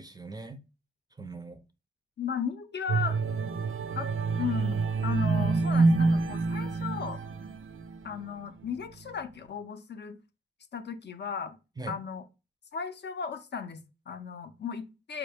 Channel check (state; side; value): normal; both; correlation 0.68